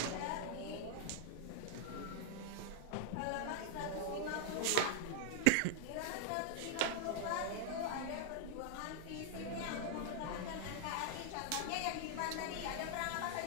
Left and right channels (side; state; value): both; different; correlation -0.01